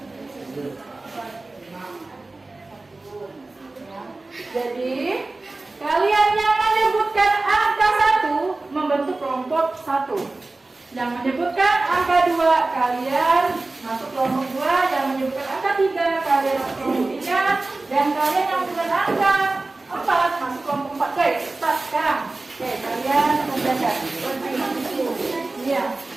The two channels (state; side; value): quieter; left; 3.2 dB